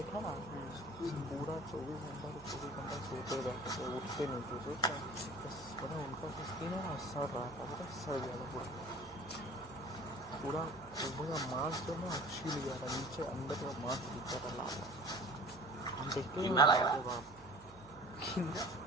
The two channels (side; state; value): right; noise; hum, 22 dB below the sound